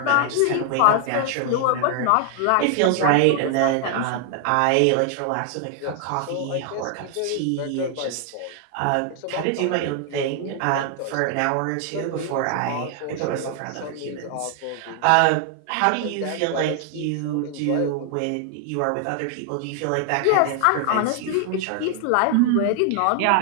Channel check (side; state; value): both; different; correlation 0.00